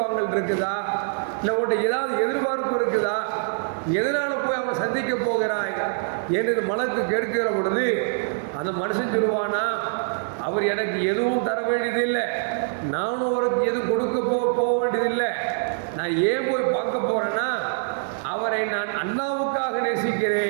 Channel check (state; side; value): silent; left; digital silence